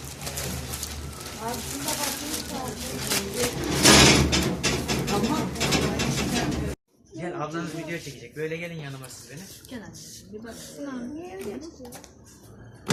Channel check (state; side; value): identical; both; correlation 1.00